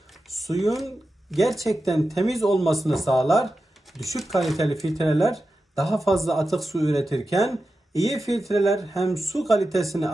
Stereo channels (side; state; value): both; normal; correlation 0.91